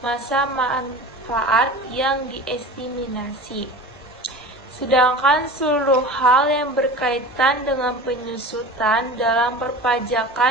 masa manfaat yang diestimasi. Sedangkan seluruh hal yang berkaitan dengan penyusutan dalam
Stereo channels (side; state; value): both; normal; correlation 0.35